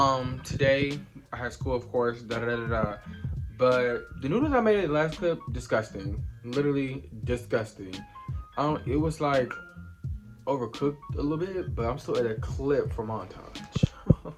Today I had school, of course, da da da da. Da. But the noodles I made in the last clip, disgusting. Literally disgusting. It was like overcooked a little bit, but I'm still at a clip for montage.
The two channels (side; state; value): both; identical; correlation 1.00